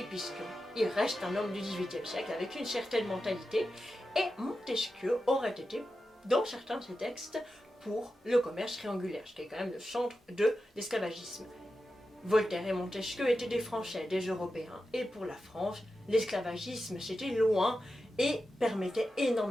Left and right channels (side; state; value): both; normal; correlation 0.91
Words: puisqu'il reste un homme du XVIIIe siècle avec une certaine mentalité, et Montesquieu aurait été, dans certains de ses textes, pour le commerce triangulaire, ce qui est quand même le centre de l'esclavagisme. Voltaire et Montesquieu étaient des Français, des Européens, et pour la France, l'esclavagisme c'était loin et permettait